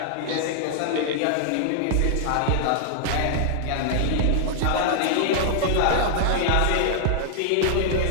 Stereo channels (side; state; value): both; different; correlation 0.00